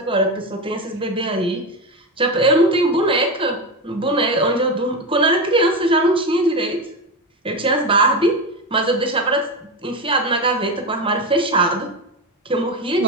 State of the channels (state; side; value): normal; both; correlation 0.16